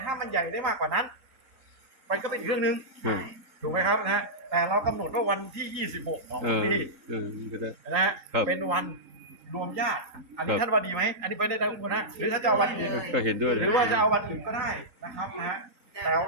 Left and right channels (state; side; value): late; left; 3.8 ms